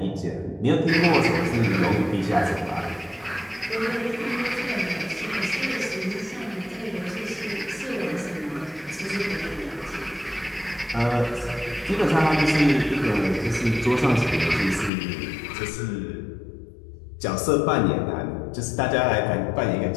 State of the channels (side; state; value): right; drops out; at 14.9 s